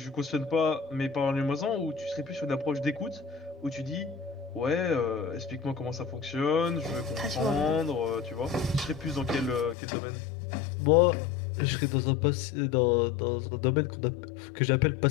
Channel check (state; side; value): drops out; right; at 9.8 s